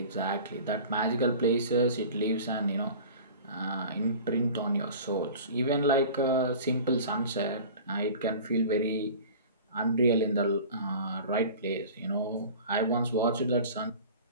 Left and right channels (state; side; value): inverted; both; correlation -0.40